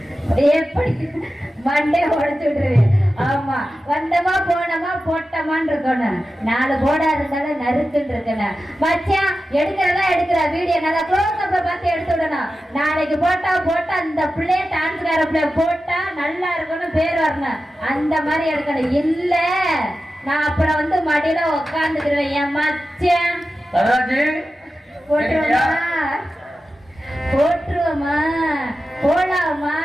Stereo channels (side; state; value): both; normal; correlation 0.93